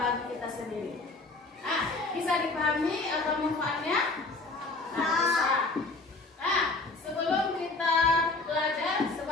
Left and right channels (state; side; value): quieter; right; 3.4 dB